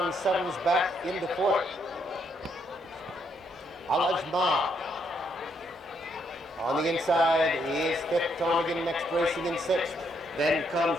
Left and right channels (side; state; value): both; normal; correlation 0.74